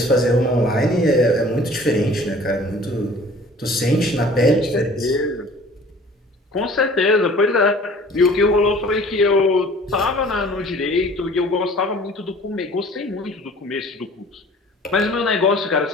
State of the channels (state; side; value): normal; both; correlation 0.49